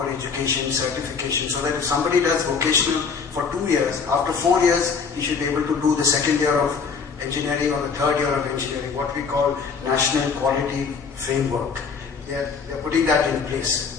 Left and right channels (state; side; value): quieter; right; 5.6 dB